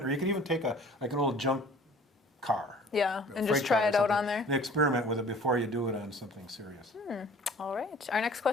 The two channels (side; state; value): both; normal; correlation 0.50